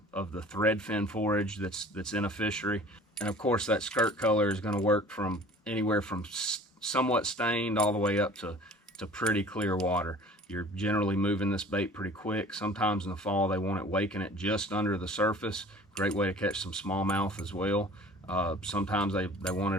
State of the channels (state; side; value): normal; both; correlation 0.46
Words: threadfin forage that's in a fishery. And of course, that skirt color is going to work from anywhere from somewhat stained all the way up to pretty clear water. You're generally moving this bait pretty quick. Sometimes in the fall, they want it waking it just under the surface. Great way to catch some smallmouth as well. Sometimes they want